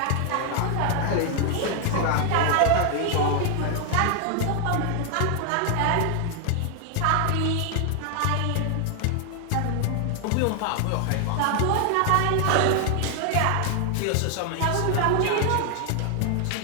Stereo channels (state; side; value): different; both; correlation 0.00